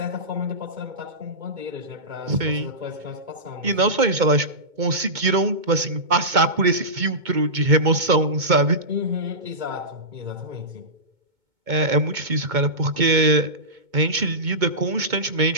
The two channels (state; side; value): late; left; 2.2 ms